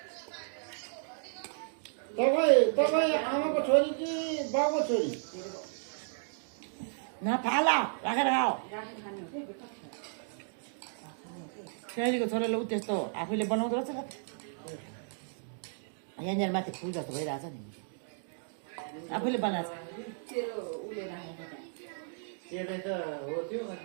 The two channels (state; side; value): silent; left; digital silence